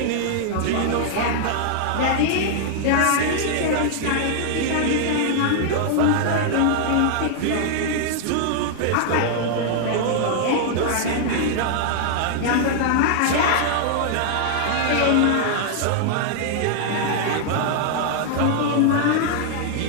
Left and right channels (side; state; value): both; different; correlation -0.01